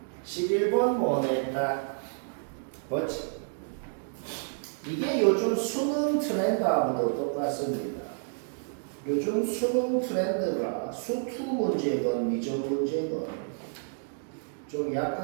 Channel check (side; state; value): left; silent; digital silence